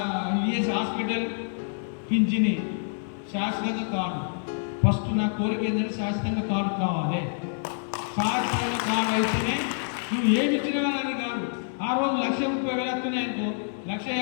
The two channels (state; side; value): silent; right; digital silence